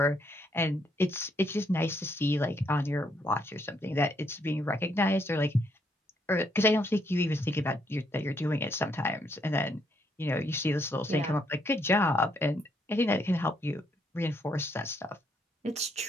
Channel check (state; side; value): normal; both; correlation 0.73